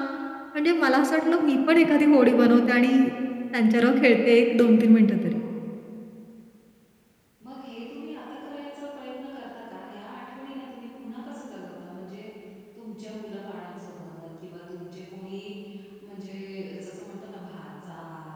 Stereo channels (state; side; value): identical; both; correlation 1.00